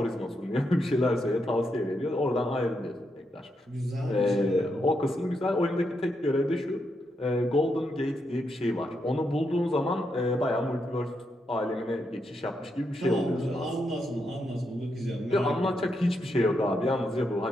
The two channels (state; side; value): normal; both; correlation 0.82